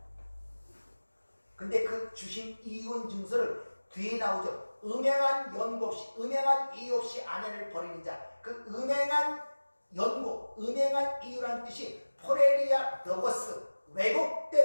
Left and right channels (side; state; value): both; inverted; correlation -1.00